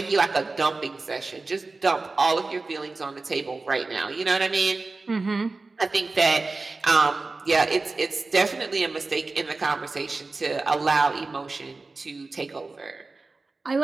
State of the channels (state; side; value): quieter; left; 3.6 dB